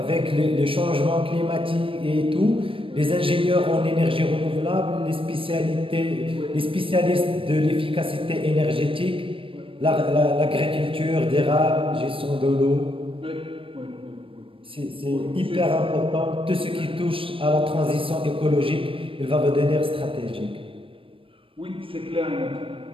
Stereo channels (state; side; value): late; left; 0.26 ms